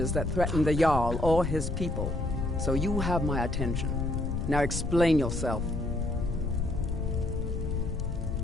that threaten the Jarl or his people. So you have my attention. Now explain yourself.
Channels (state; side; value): noise; left; rumble, 3 dB below the sound